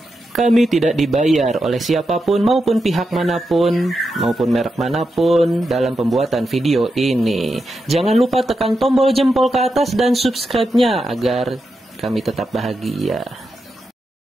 Kami tidak dibayar oleh siapapun maupun pihak manapun, maupun merek manapun dalam pembuatan video ini. Jangan lupa tekan tombol jempol ke atas dan subscribe-nya agar kami tetap bahagia.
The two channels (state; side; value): normal; both; correlation 0.87